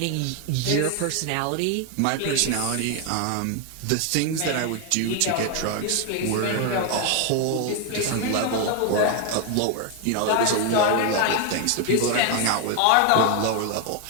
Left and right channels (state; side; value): different; both; correlation 0.01